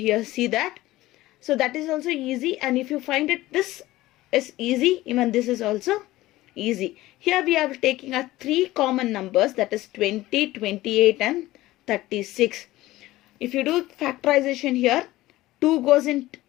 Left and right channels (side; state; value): right; quieter; 17.2 dB